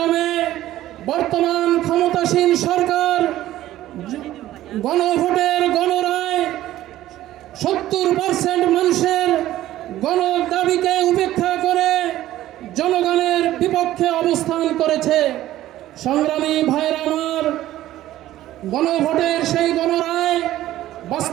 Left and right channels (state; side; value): quieter; left; 14.2 dB